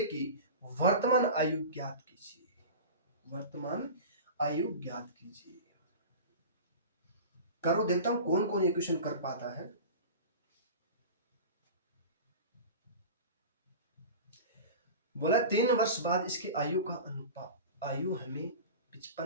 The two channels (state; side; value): inverted; both; correlation -0.33